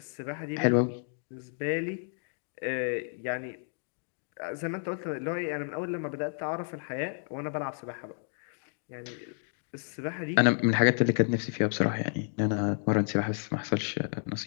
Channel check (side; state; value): right; silent; 57 dB below the other